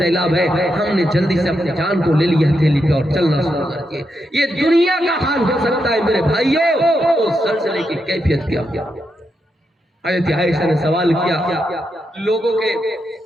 ہے، ہم نے جلدی سے اپنی جان کو لے لیا ہتھیلی پہ اور چلنا شروع کر دیا۔ یہ دنیا کا حال ہو سکتا ہے میرے بھائیوں، اس زلزلے کی کیفیت کیا کیا۔ حضرت عائشہ نے سوال کیا، لوگوں کے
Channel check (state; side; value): normal; both; correlation 0.84